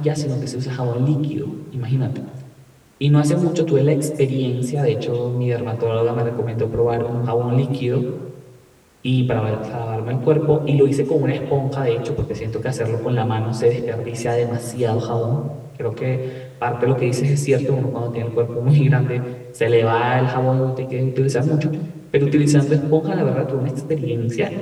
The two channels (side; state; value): both; identical; correlation 1.00